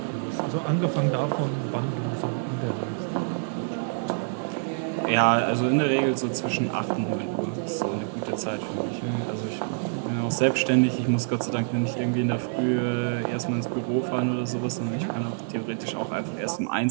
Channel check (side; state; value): left; silent; digital silence